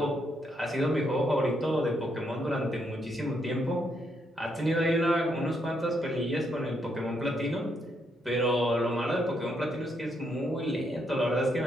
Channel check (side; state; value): both; normal; correlation 0.77